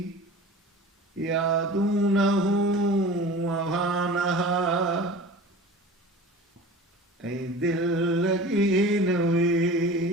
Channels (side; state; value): both; normal; correlation 0.38